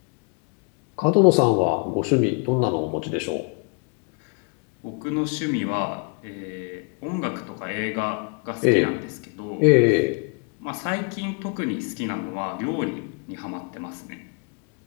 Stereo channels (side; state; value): right; quieter; 34.1 dB